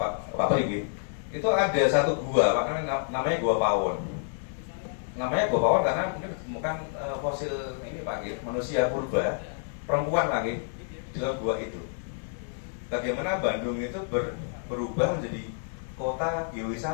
Perigi, itu ada satu gua Pak, namanya Gua Pawon. Namanya Gua Pawon karena mungkin ditemukan fosil ini Pak, manusia purba, perempuan lagi di dalam gua itu. Bagaimana Bandung itu berubah menjadi kota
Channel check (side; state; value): right; silent; digital silence